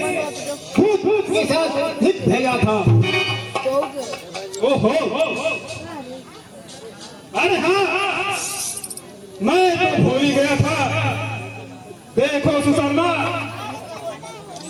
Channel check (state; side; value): identical; both; correlation 1.00